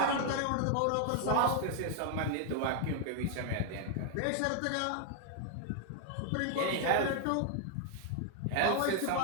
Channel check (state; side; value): different; both; correlation 0.00